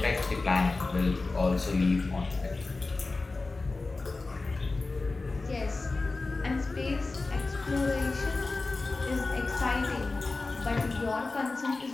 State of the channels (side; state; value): right; quieter; 3.5 dB